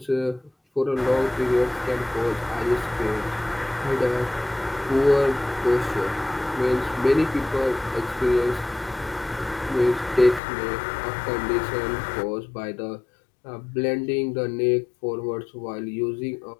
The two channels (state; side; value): drops out; right; at 10.4 s